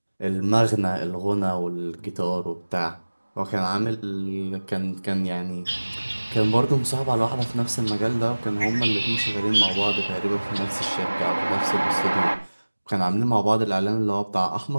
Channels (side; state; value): both; inverted; correlation -1.00